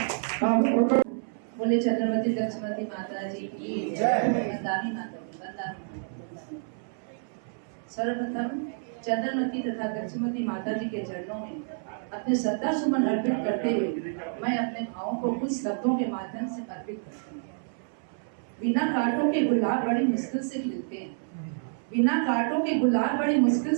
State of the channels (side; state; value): left; silent; 59 dB below the other